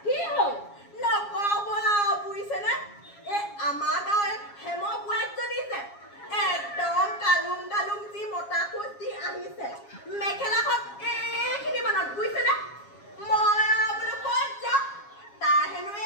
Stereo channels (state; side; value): late; right; 7.3 ms